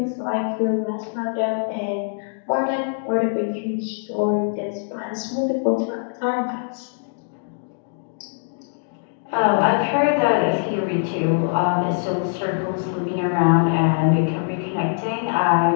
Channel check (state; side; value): silent; right; digital silence